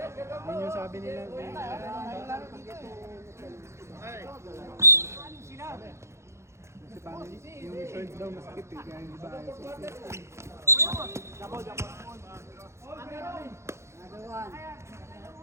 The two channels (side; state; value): left; late; 0.13 ms